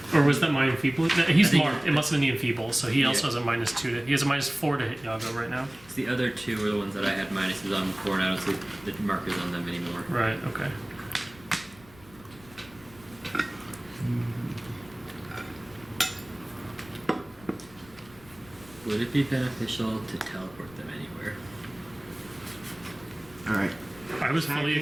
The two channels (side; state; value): left; noise; rumble, 23 dB below the sound